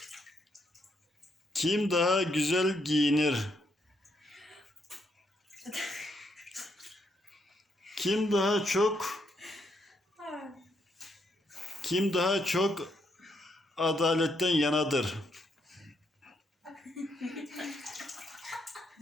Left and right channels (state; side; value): normal; both; correlation 0.76